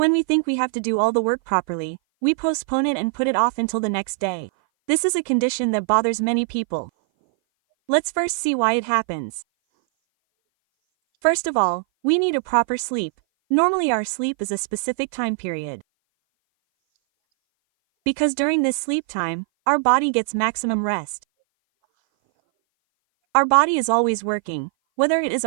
we think we have to do all the work properly, we postpone it and put it off until the next day. This is a condition that bothers many people. Let's first see why it happens. First of all, we need a proper sleep. Normally our sleep is a specific time period. Because during this sleep time, our body gets maximum rest. Our body is always working, whether it is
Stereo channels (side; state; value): left; silent; 58 dB below the other